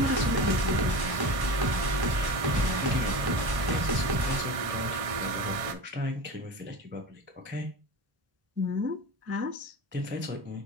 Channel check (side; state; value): left; late; 1.6 ms